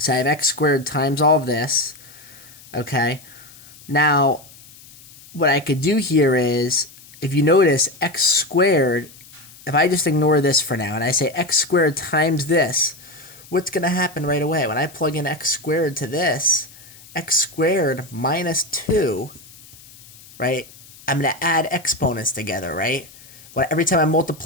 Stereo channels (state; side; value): noise; left; hiss, 22 dB below the sound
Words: I have x squared times all of this, okay? Now, what I could do here is, if you notice, x squared, if I just ignore this for now and I say x squared times this, what's going to happen right away? When I plug in x squared to this, x squared minus 2 right? I'm going to add exponents together, right? Every time I